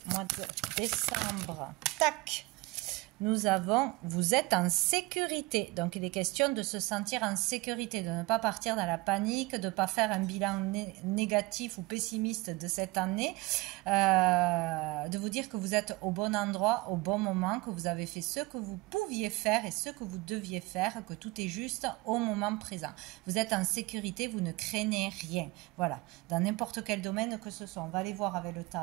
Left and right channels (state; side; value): quieter; left; 22.5 dB